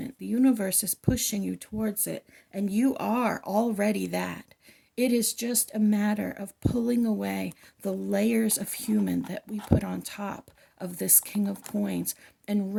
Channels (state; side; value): identical; both; correlation 1.00